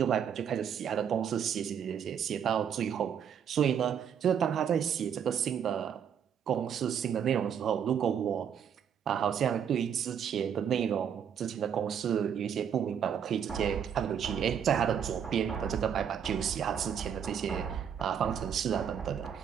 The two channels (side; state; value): left; quieter; 8.2 dB